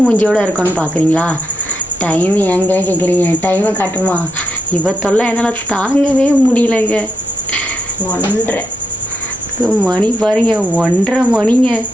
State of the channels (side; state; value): both; normal; correlation 0.80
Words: மூஞ்சியோட இருக்கோன்னு பார்க்குறீங்களா? டைம் எங்கே கேட்குறீங்க? டைமை காட்டுமா? இவ தொல்லை என்னால் தாங்கவே முடியலங்க. 1:30 மணி பாருங்க, 1:30 மணிங்க.